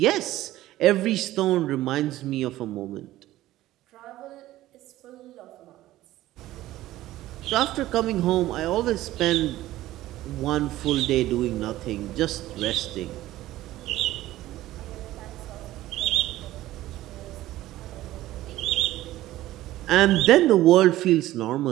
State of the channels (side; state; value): left; quieter; 15.4 dB